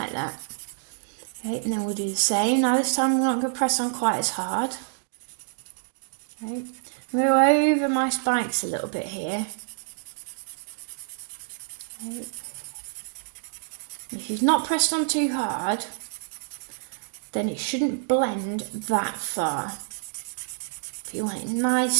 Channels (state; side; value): silent; left; digital silence